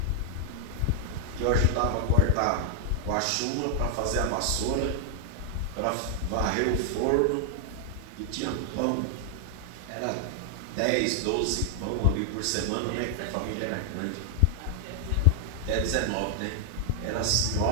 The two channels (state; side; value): different; both; correlation 0.00